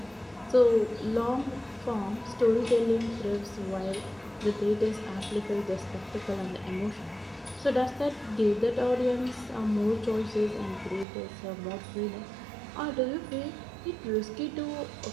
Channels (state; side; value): drops out; left; at 11.1 s